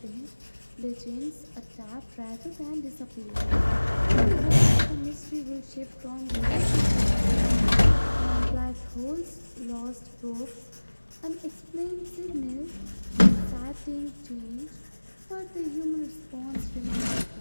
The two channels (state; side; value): inverted; both; correlation -1.00